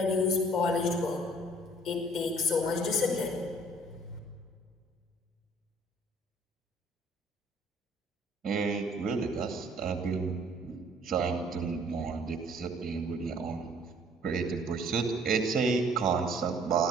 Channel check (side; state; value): both; normal; correlation 0.57